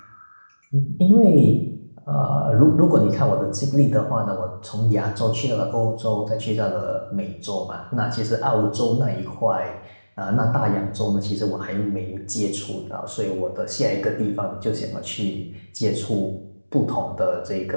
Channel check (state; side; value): inverted; both; correlation -1.00